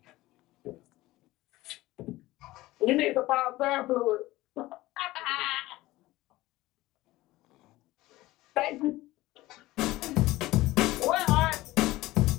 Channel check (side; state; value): right; quieter; 18.1 dB